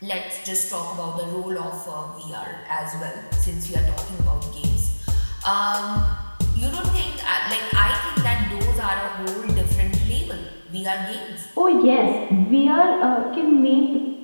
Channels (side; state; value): both; inverted; correlation -1.00